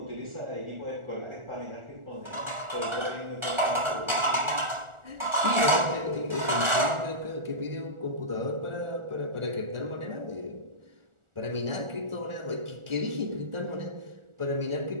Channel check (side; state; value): left; late; 1.4 ms